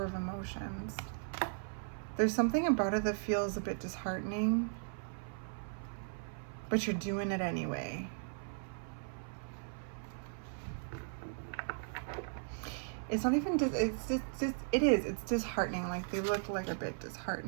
of Emotions. There's something about it that feels a bit disheartening, but you're doing it anyway. It's not even, it's disheartening. Like, they look like a bit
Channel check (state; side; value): silent; left; 53 dB below the other